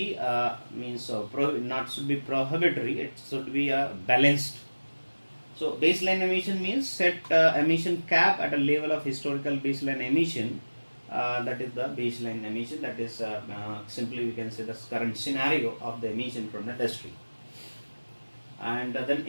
not should be prohibitory. It should be balanced. So baseline emission means set emission cap at a level of historical baseline emission. That is the baseline emission. That is simply we can say the current scenario of the emission from the industry. And then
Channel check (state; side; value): inverted; both; correlation -1.00